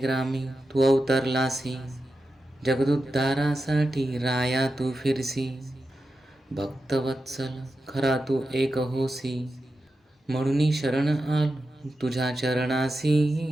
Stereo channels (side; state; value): both; normal; correlation 0.90